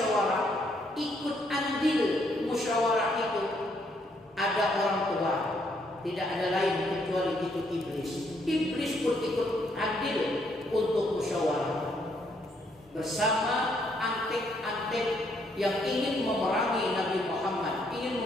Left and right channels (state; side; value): normal; both; correlation 0.71